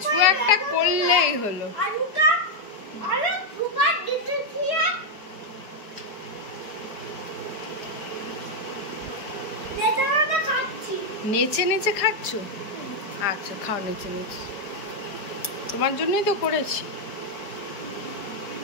একটা করলেই হলো। আলুটা আলু সুপার দিতে দিয়ে নেতাটা খাচ্ছি। নেচে নেচে খাচ্ছ? আচ্ছা খাও নেচে নেচে, তোমার জন্যই তো করেছি।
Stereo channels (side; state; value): right; late; 4.8 ms